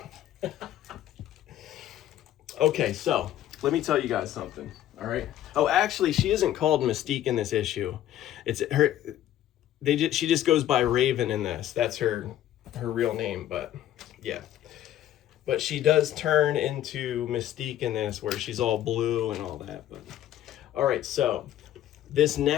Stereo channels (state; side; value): quieter; right; 12.2 dB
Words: Okay, so let me tell you guys something, all right? Oh, actually, she isn't called Mystique in this issue. It's her. She just goes by Raven in this. That's her real name, but yeah. But she does turn into Mystique in this, where she's all blue and all that. But all right, so these